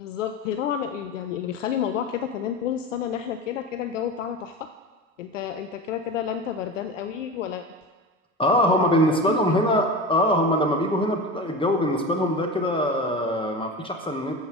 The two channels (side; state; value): both; normal; correlation 0.28